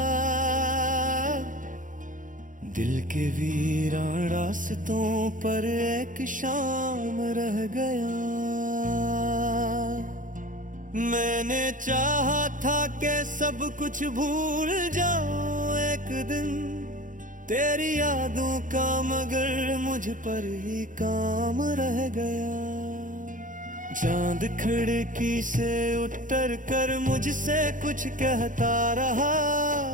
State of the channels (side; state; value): left; late; 0.38 ms